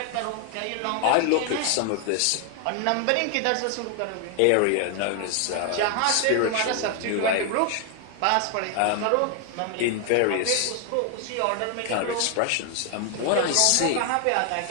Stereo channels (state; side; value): different; both; correlation 0.00